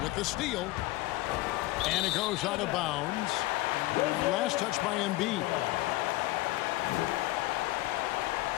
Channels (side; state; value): right; quieter; 18.6 dB